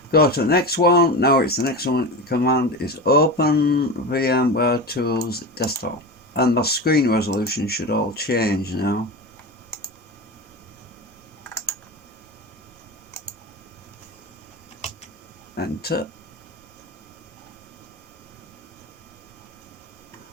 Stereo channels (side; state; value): both; normal; correlation 0.24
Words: Go to the next one. Now it's the next one. The command is open VMware Tools desktop. And my screen resolution should all change now. Enter.